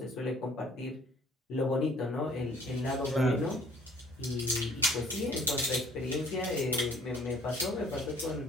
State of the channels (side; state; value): both; normal; correlation 0.56